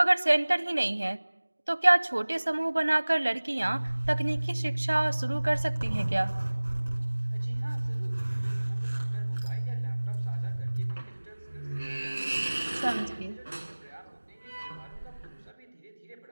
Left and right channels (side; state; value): both; inverted; correlation -1.00